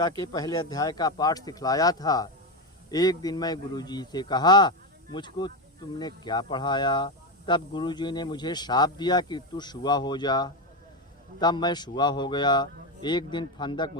के पहले अध्याय का पाठ सिखलाया था। एक दिन मैं गुरुजी से कहा, मुझको तुमने क्या पढ़ाया। तब गुरुजी ने मुझे शाप दिया कि तू शुआ हो जा। तब मैं शुआ हो गया। एक दिन फंदक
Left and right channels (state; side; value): normal; both; correlation 0.11